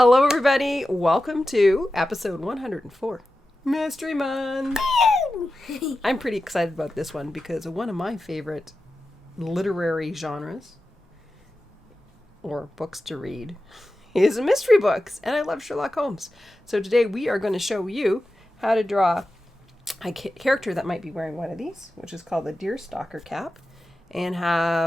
everybody. Welcome to episode 104, Mystery Month. I'm pretty excited about this one because one of my favorite literary genres or books to read is mystery books, and I love Sherlock Holmes. So today we are going to show you how to draw a character that might be wearing one of these, which is called the deerstalker cap, and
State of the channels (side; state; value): both; normal; correlation 0.93